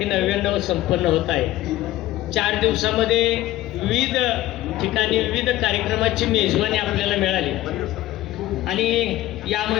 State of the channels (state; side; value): quieter; right; 15.2 dB